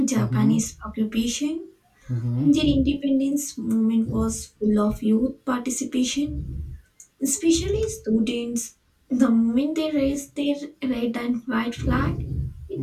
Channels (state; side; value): identical; both; correlation 1.00